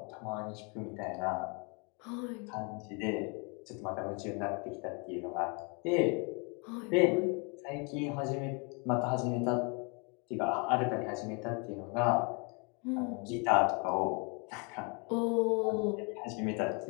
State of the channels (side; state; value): right; quieter; 33.6 dB